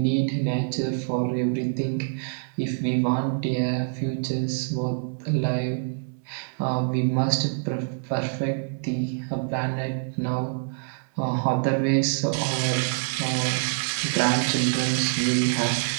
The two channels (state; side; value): silent; left; digital silence